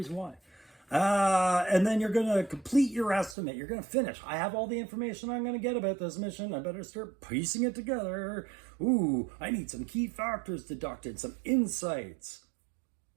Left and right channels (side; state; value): left; drops out; at 3.4 s